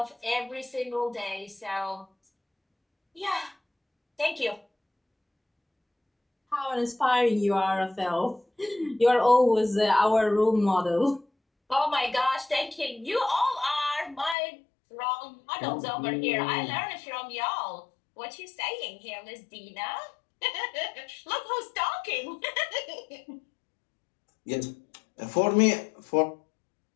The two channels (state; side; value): drops out; right; at 14.4 s